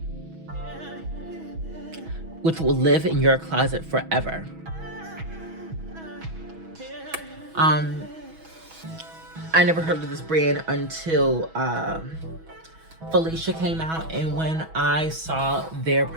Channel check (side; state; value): left; late; 6.2 ms